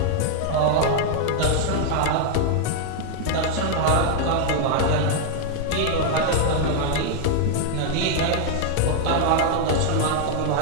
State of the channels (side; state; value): both; different; correlation 0.00